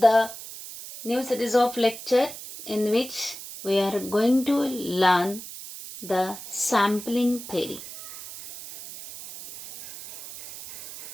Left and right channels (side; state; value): right; noise; hiss, 13 dB below the sound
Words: new series of lecture in which we are going to learn the sampling theory.